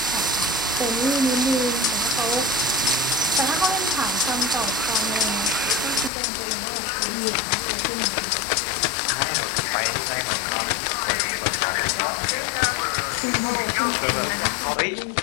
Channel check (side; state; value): right; drops out; at 6.1 s